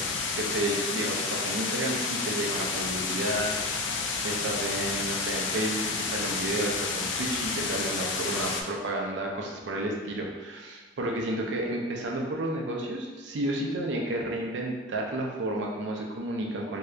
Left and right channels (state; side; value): normal; both; correlation 0.23